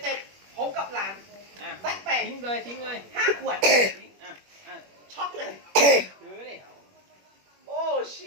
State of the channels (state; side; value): late; left; 21 ms